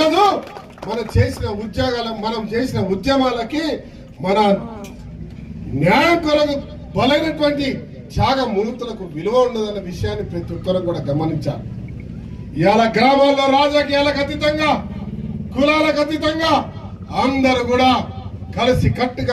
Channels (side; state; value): both; identical; correlation 1.00